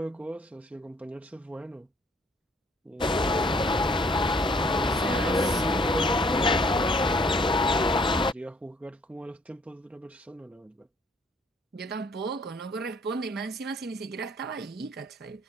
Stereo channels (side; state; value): both; normal; correlation 0.62